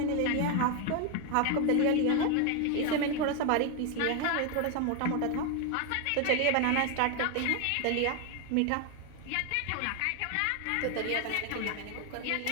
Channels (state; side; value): different; both; correlation 0.01